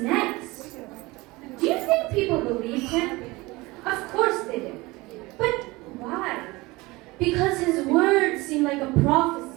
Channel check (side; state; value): left; quieter; 22.2 dB